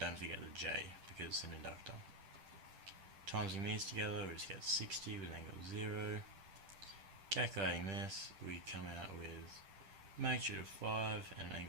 forget the J, because it's an inductor. Timesing these together, we just get 60 with an angle of 0. Calculating this, we come out with magnitude of 5 and an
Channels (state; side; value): late; left; 10 ms